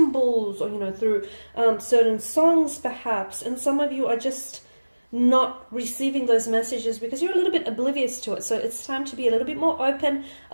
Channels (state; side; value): inverted; both; correlation -1.00